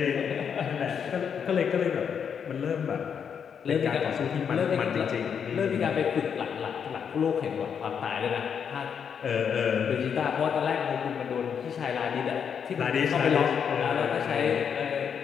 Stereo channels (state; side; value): quieter; right; 7.3 dB